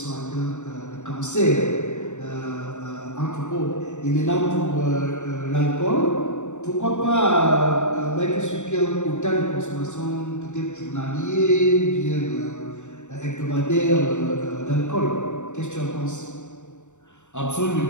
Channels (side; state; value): right; late; 0.84 ms